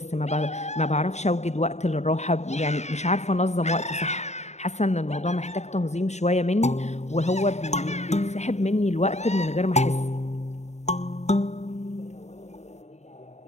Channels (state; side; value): late; right; 0.33 ms